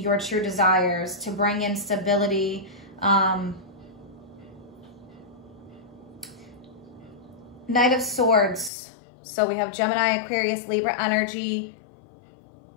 true desires to bring in stability. Knight of Swords. So we have Gemini, Aquarius, Libra energy.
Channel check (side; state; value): right; drops out; at 8.7 s